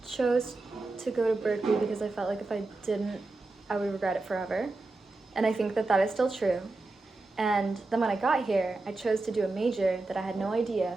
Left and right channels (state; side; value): quieter; left; 3.2 dB